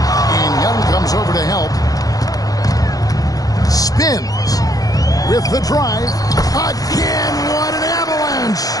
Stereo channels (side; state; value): right; late; 0.18 ms